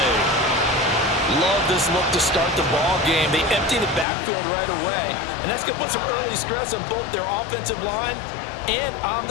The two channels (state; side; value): drops out; right; at 4.0 s